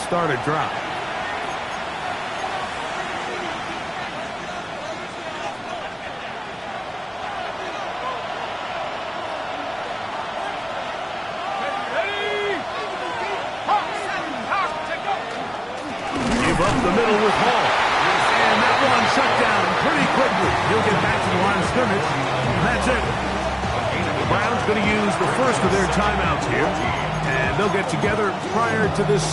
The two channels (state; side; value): identical; both; correlation 1.00